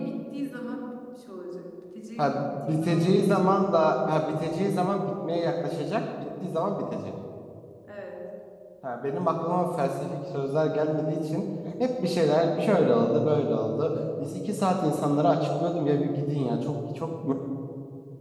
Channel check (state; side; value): identical; both; correlation 1.00